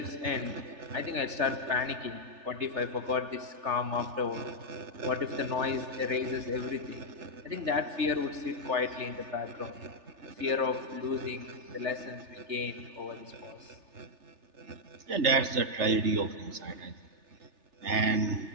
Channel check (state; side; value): late; left; 3.3 ms